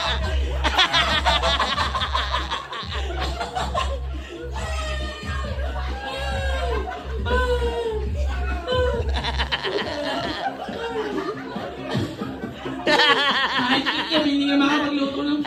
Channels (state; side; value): identical; both; correlation 1.00